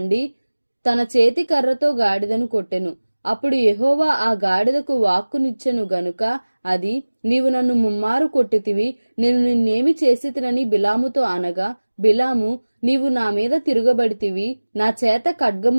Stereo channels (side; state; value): both; inverted; correlation -1.00